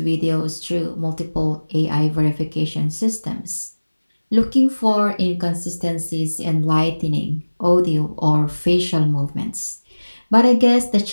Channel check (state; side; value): inverted; both; correlation -1.00